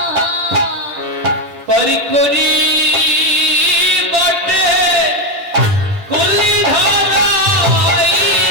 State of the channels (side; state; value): left; late; 10 ms